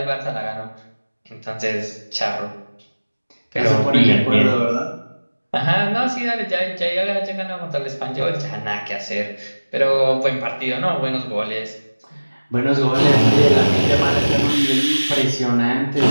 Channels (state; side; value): inverted; both; correlation -1.00